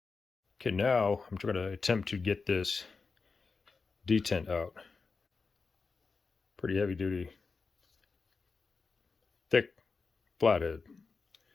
Okay, now I'm going to attempt to get this detent out. Pretty heavy duty, thick flathead.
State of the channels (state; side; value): quieter; right; 4.5 dB